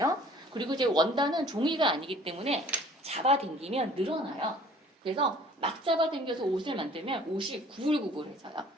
그리고 이제 원단은 종이가 아니기 때문에 잡아당기면 늘어나요. 그래서 막 잡아당겨서 옷을 만들면 옷이 구불구불해져요.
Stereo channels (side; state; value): both; normal; correlation 0.52